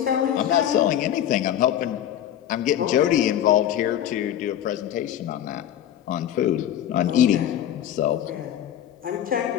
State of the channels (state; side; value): quieter; right; 10.9 dB